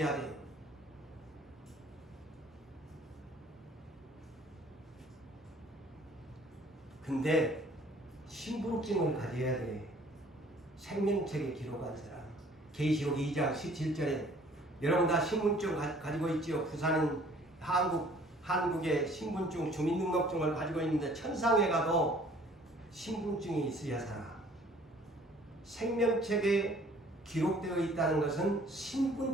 돼요. 근데 신분증을 가져야 돼. 생명책에 기록한 사람. 계시록 2장 17절에 여러분 다 신분증 가지고 있지요. 부산은 한국의 신분증 주민등록증을 가지고 있는데 천상에 가도 신분증이 있어야 살아. 생명책에 기록되어 있다는 것은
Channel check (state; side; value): normal; both; correlation 0.55